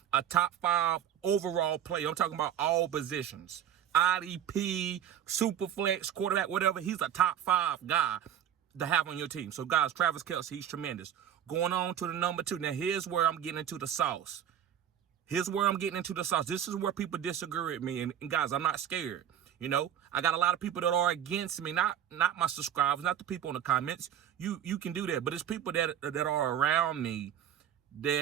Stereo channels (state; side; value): quieter; left; 10.0 dB